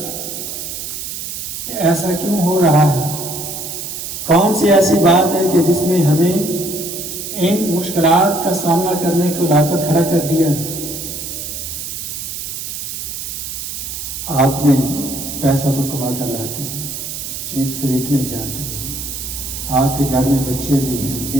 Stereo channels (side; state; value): right; noise; hiss, 6 dB below the sound